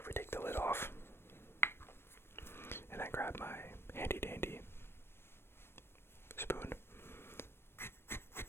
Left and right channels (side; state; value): right; late; 0.12 ms